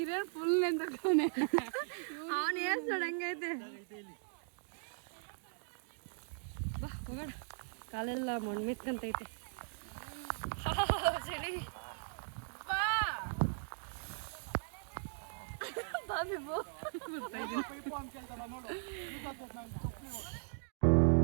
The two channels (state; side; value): silent; left; digital silence